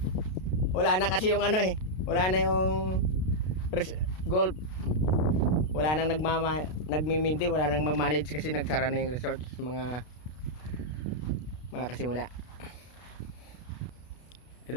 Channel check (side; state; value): right; late; 32 ms